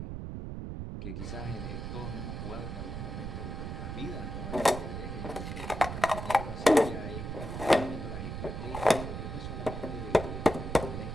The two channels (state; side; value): noise; right; rumble, 6 dB below the sound